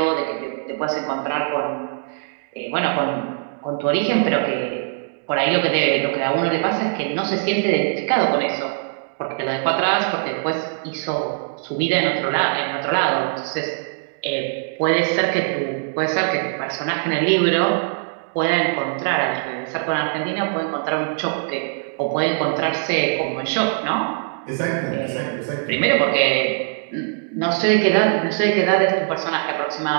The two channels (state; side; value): silent; left; digital silence